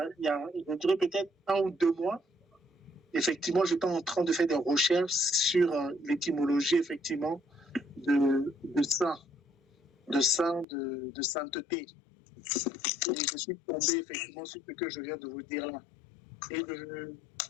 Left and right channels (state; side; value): drops out; right; at 10.7 s